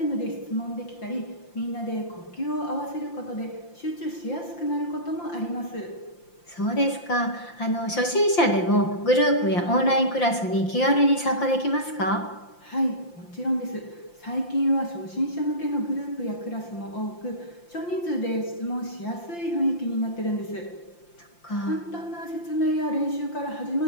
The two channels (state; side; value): late; right; 5.8 ms